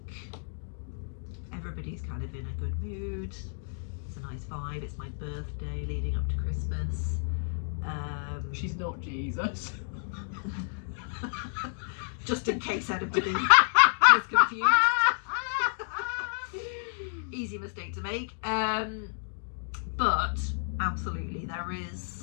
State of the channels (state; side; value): silent; right; digital silence